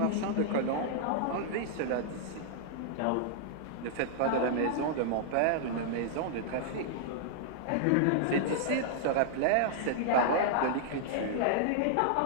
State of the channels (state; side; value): different; both; correlation -0.01